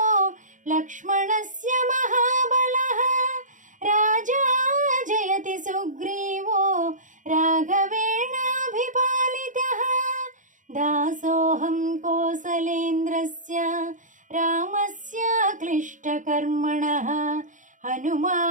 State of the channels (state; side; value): late; left; 0.37 ms